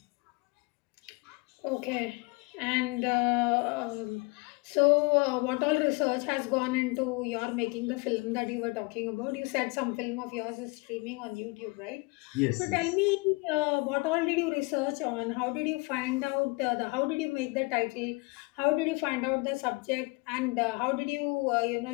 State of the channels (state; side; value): quieter; right; 27.8 dB